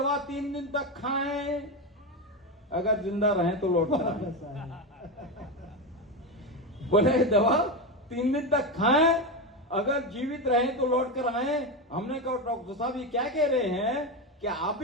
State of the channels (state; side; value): normal; both; correlation 0.14